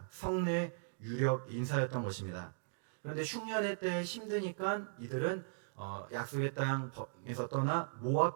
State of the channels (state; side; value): silent; left; digital silence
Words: 성내 유력 인사였던 것입니다. 그런데 흉년의 때 힘드니까 이들은 약속의 땅에서 떠나